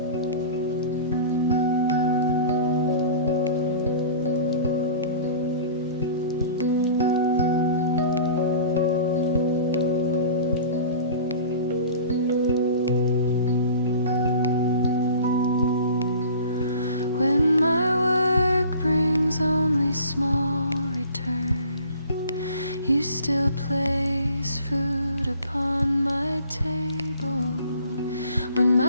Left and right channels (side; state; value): both; inverted; correlation -0.44